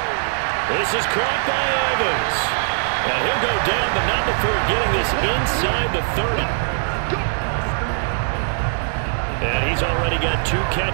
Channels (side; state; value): left; silent; digital silence